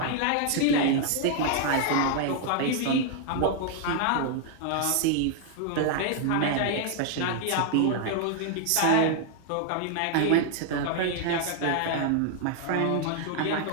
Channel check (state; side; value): different; both; correlation 0.00